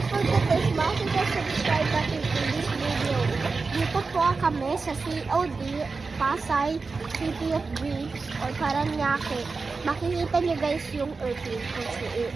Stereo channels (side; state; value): left; quieter; 4.3 dB